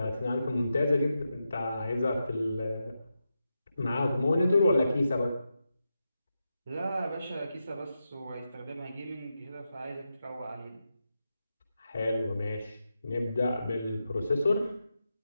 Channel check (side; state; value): both; inverted; correlation -0.89